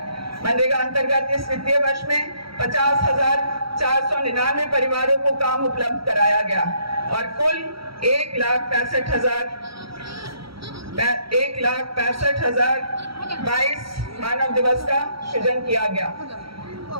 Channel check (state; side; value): late; left; 0.75 ms